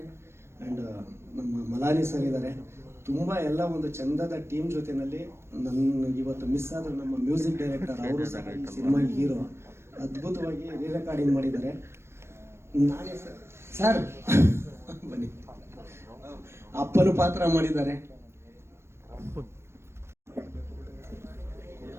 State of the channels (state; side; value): late; left; 0.12 ms